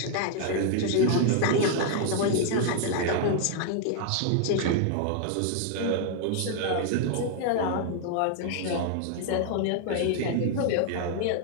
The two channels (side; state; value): both; different; correlation 0.00